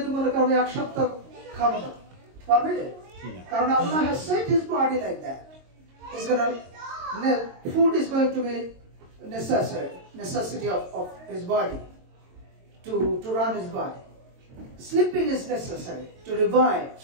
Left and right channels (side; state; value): left; late; 22 ms